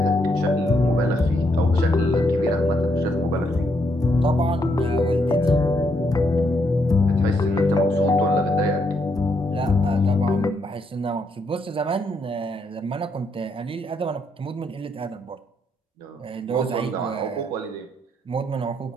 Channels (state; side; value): normal; both; correlation 0.76